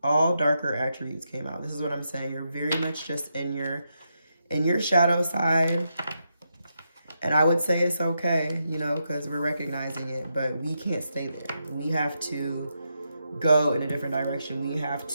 all darker attributes came out. This is what I'm saying. You're very much just in your shadow side. And I would say it's okay, you know, because we're recognizing it, but we can't stay there. We have to go in a different direction. We have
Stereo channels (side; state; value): both; inverted; correlation -0.83